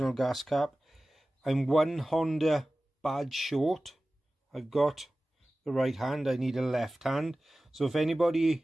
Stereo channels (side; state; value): both; normal; correlation 0.96